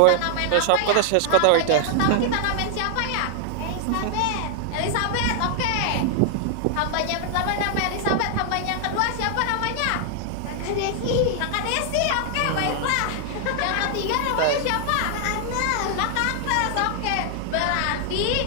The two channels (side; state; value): both; different; correlation 0.00